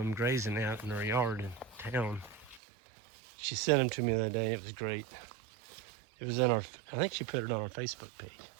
grazing out in her yard in town. She sent them to me the other day. It was great. It was I think she put it on our Facebook page.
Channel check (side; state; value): left; drops out; at 2.6 s